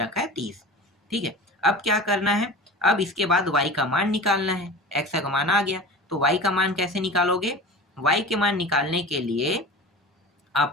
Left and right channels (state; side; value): normal; both; correlation 0.35